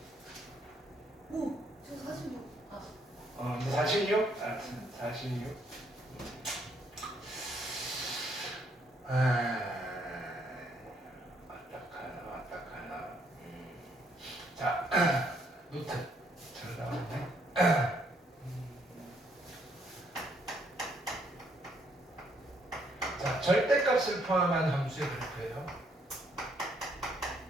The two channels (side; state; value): both; normal; correlation 0.70